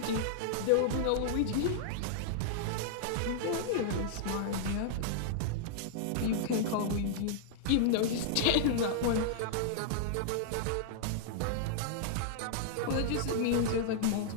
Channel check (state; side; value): different; both; correlation -0.01